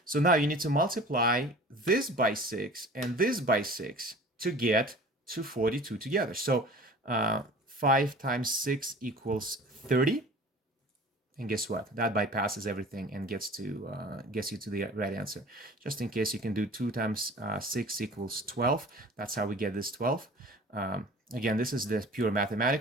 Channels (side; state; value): both; normal; correlation 0.43